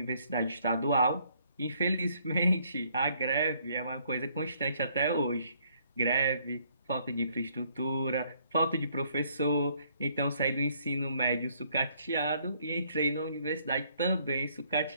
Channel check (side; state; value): both; inverted; correlation -0.67